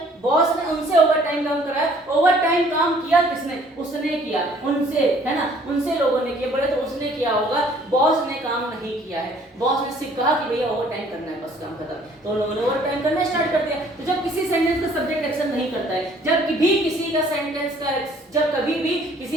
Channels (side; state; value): both; normal; correlation 0.58